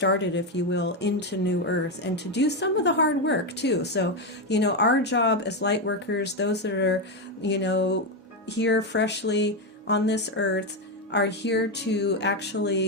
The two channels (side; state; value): both; normal; correlation 0.08